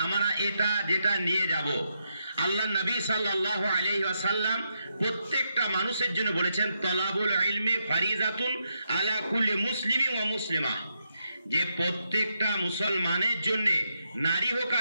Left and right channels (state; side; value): inverted; both; correlation -0.82